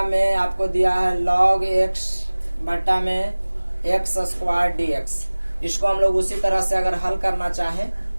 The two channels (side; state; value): both; inverted; correlation -1.00